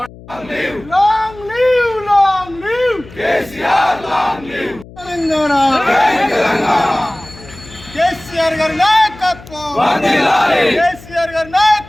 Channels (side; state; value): left; noise; hum, 19 dB below the sound